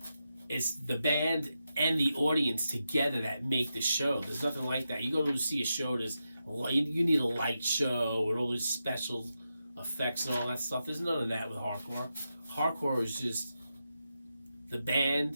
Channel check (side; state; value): both; inverted; correlation -0.88